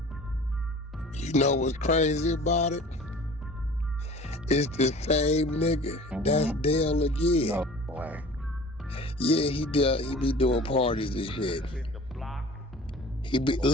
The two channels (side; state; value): both; normal; correlation 0.44